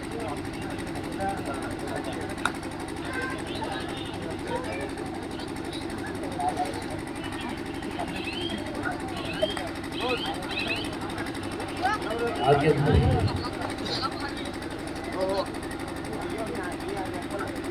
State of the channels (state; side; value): identical; both; correlation 1.00